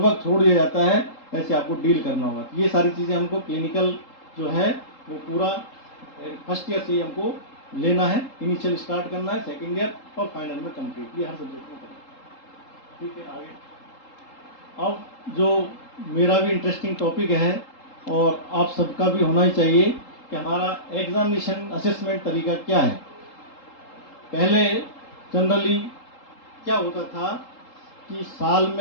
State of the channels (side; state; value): right; late; 3.8 ms